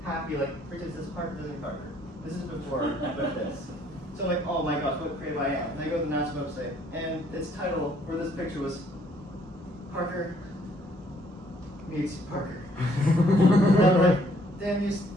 happy, like, for instance, this Parker doesn't Parker. This is before I put this. So I'm like, oh my gosh, what creative I am. And I go to the NASA website, and its title for this picture was Parker meets Parker. And I'm like, damn you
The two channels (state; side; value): normal; both; correlation 0.64